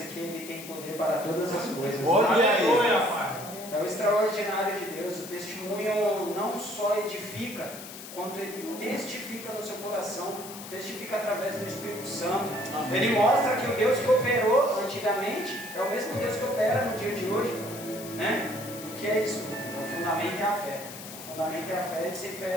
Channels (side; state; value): left; noise; hiss, 13 dB below the sound